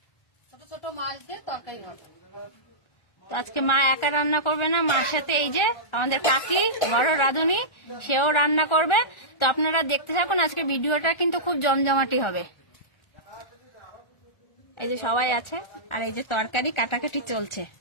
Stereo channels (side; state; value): right; late; 1.4 ms